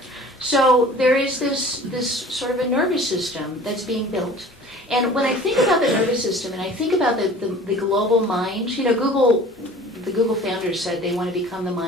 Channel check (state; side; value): normal; both; correlation 0.45